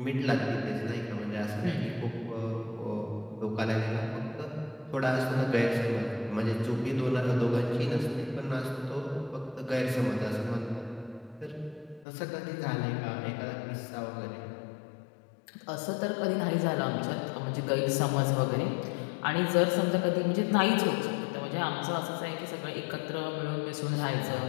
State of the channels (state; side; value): drops out; right; at 12.1 s